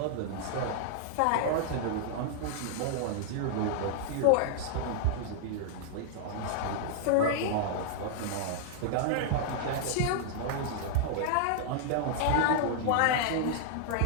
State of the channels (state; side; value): different; both; correlation -0.01